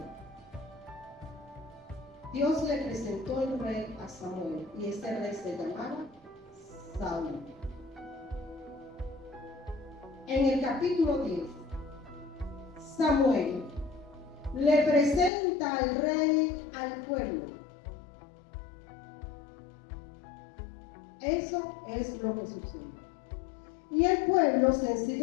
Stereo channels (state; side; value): drops out; right; at 15.3 s